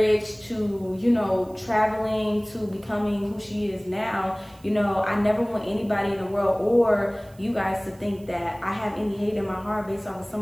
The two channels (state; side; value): noise; right; hiss, 28 dB below the sound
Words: to, traveling to becoming who she is now. I never want anybody in the world or you guys to think that I have any hate in my heart based off of